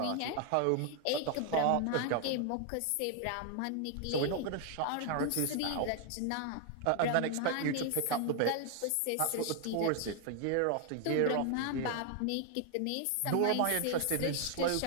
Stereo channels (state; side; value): different; both; correlation 0.00